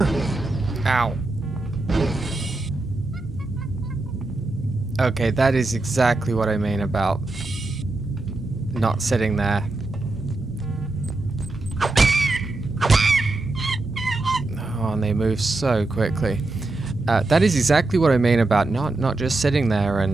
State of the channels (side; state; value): left; quieter; 3.1 dB